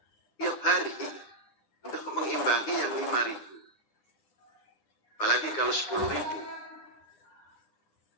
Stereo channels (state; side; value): late; right; 9.9 ms